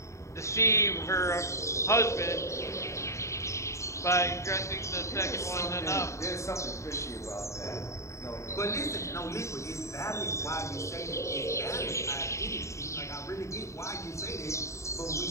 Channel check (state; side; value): late; right; 0.14 ms